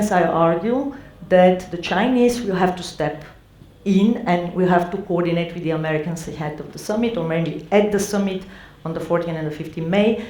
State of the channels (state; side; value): identical; both; correlation 1.00